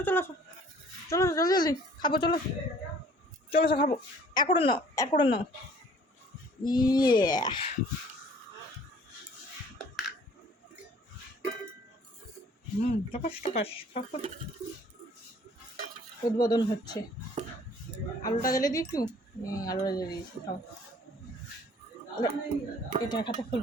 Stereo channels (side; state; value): both; normal; correlation 0.54